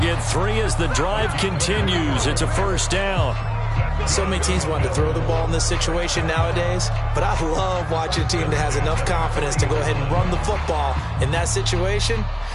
3 as the drive continues. It's a 1st down. So many teams want to throw the ball in this situation nowadays, but I love watching a team that has enough confidence to go ahead and run the football. In that situation,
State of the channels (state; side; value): identical; both; correlation 1.00